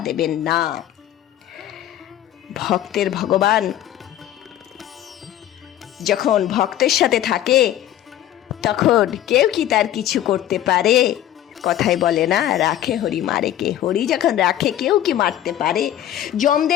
দেবেন না। ভক্তের ভগবান যখন ভক্তের সাথে থাকে তখন কেউ কি তার কিছু করতে পারে? কথায় বলে না, রাখে হরি মারে কে। হরি যখন রাখে কেউ কি মারতে পারে?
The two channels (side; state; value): right; quieter; 12.2 dB